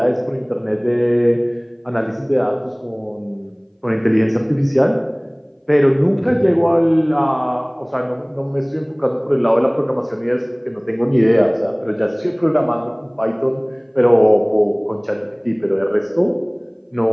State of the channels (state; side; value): identical; both; correlation 1.00